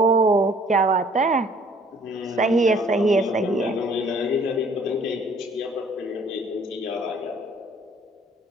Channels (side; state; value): both; normal; correlation 0.57